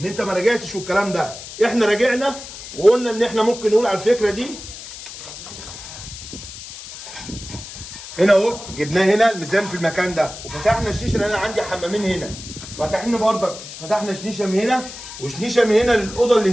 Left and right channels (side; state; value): left; noise; hiss, 13 dB below the sound